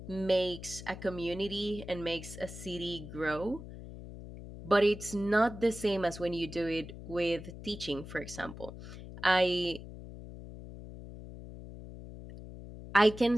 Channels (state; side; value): noise; left; hum, 13 dB below the sound